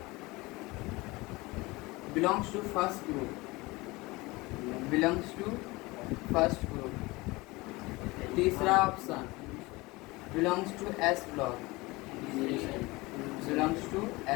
belongs to first group, belongs to first group. तीसरा option belongs to S block, belongs to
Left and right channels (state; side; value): quieter; right; 22.5 dB